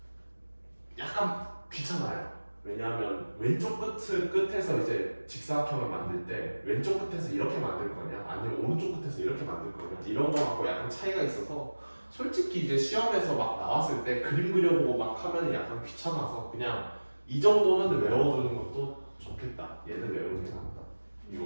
약간 귀찮아요. 왜냐하면 왼쪽 끝에서 이제 직사각형을 만들 때 왼쪽 끝에서 이렇게 만들 거냐 아니면 오른쪽 끝에서 이렇게 만들 거냐 이런 거 갖고 약간 차이가 있어서 솔직히 이제 시험에서 막 나왔을 때 그림 그려보고 막 하면 약간 귀찮아서 그냥 이 정도는 외워두는 것도 좋겠다. 얘는 외우는 게 낫다.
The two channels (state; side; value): inverted; both; correlation -1.00